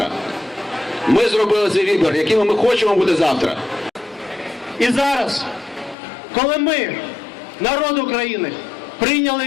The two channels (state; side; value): drops out; right; at 6.0 s